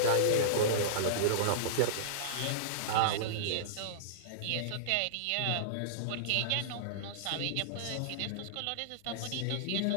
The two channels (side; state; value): both; different; correlation -0.02